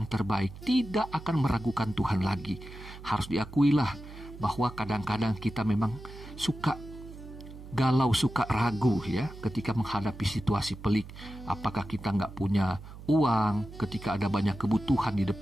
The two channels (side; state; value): right; noise; hum, 15 dB below the sound